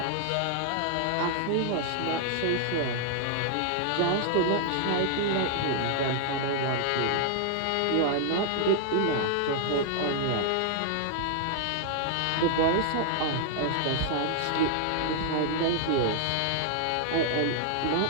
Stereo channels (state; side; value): different; both; correlation 0.00